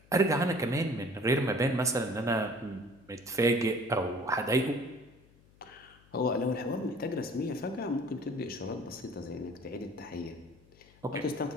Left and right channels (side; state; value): left; noise; hum, 28 dB below the sound